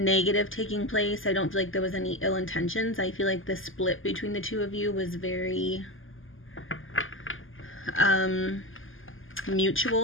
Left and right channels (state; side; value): late; right; 0.58 ms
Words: taking place. I don't feel like there was any ill intentions. I feel like the split between the two of you was very